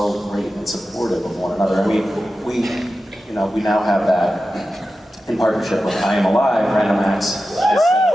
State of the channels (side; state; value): both; normal; correlation 0.93